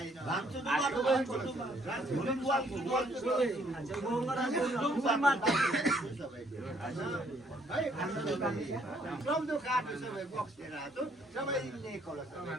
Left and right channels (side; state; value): both; normal; correlation 0.66